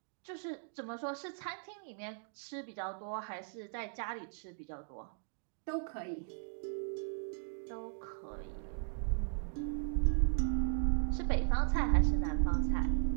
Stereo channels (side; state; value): left; silent; digital silence